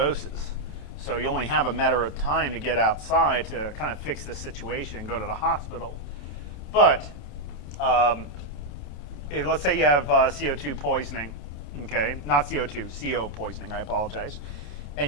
So you only have a matter of time to get outside to kind of fix this situation and go to the hospital. But let's say you have CO2 poisoning, okay? Not CO2, CO poisoning, I apologize. And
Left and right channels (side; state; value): right; late; 28 ms